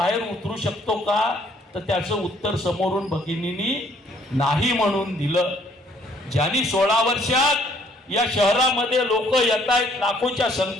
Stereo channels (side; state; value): both; normal; correlation 0.63